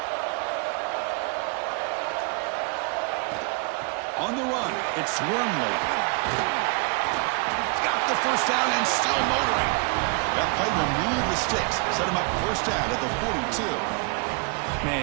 On the run, it's Wormley. He's got the 1st down and still motoring. That play will move the sticks, set him up 1st down at the 42.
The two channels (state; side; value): quieter; left; 32.6 dB